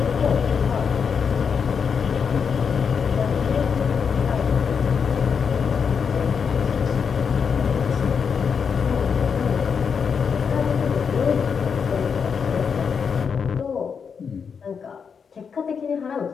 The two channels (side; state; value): right; quieter; 6.3 dB